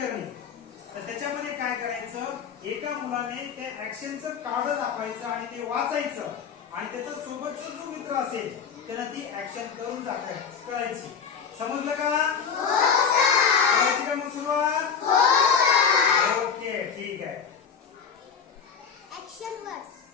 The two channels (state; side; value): quieter; right; 6.7 dB